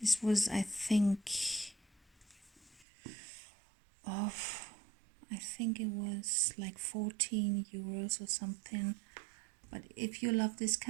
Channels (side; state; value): left; drops out; at 2.9 s